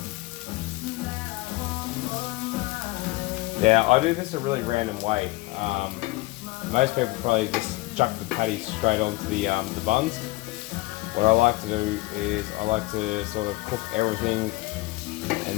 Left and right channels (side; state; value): right; quieter; 21.3 dB